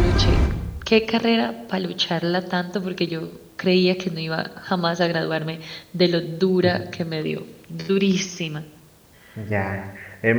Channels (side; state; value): both; identical; correlation 1.00